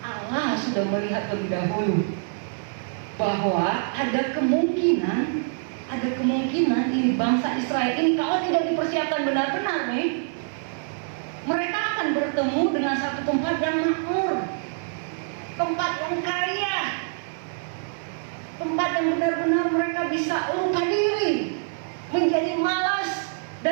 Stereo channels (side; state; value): left; silent; digital silence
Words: Allah sudah melihat lebih dahulu bahwa ada kemungkinan ini bangsa Israel ini kalau tidak dipersiapkan benar-benar nih, mereka akan bertemu dengan satu tempat yang makmur, tempat yang kaya, tempat yang benar-benar mereka bisa lupa diri, menjadi malas